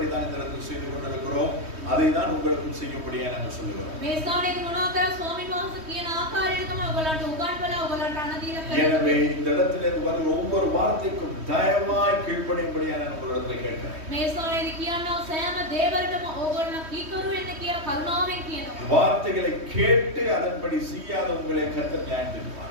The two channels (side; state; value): left; late; 3.2 ms